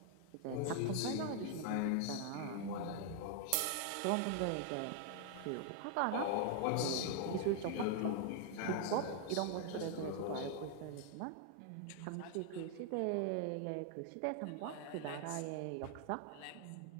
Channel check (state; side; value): different; both; correlation 0.00